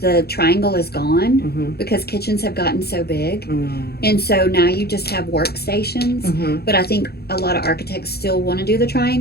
the triangle is gone Mm-hmm. because kitchens have gotten so big. Mm-hmm. And so now you just have workstations. Mm-hmm. But I think a lot of architects still want to do the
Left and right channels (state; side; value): late; right; 0.46 ms